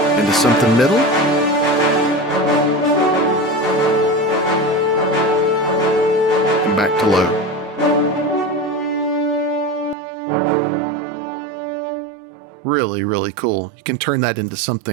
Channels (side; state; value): left; drops out; at 10.0 s